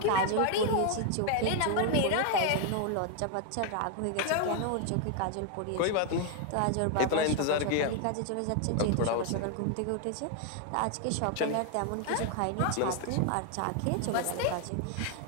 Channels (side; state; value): both; different; correlation 0.01